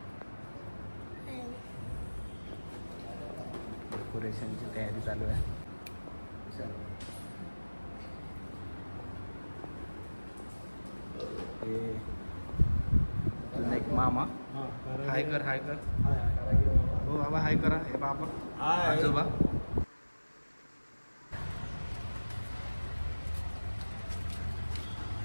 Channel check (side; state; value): both; inverted; correlation -1.00